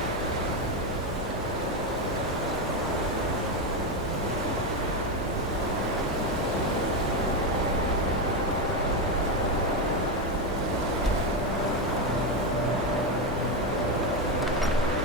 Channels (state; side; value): normal; both; correlation 0.10